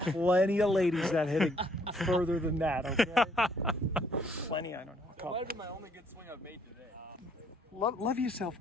of ladies that hit it further than that, okay? Plenty, I don't know. That might have been my only good swing I've made today. Love yourself,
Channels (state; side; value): normal; both; correlation 0.66